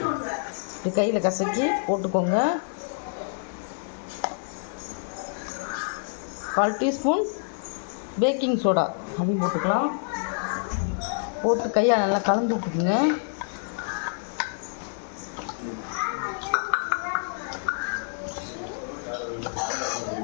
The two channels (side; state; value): right; silent; 58 dB below the other